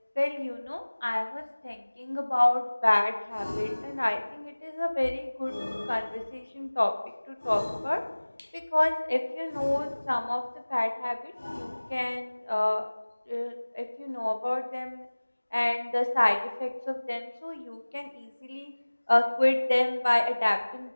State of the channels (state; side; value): inverted; both; correlation -1.00